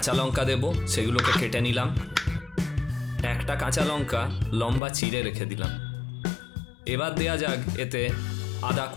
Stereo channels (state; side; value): drops out; right; at 4.8 s